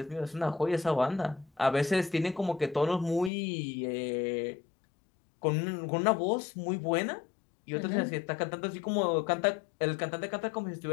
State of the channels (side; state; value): right; drops out; at 3.3 s